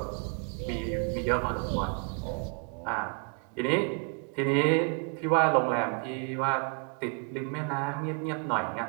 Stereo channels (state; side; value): quieter; left; 36.2 dB